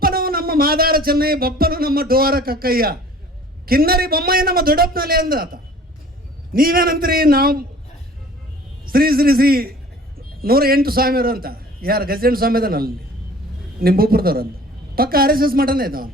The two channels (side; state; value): both; normal; correlation 0.48